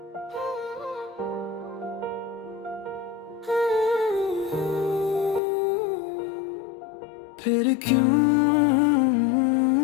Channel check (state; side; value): drops out; right; at 5.4 s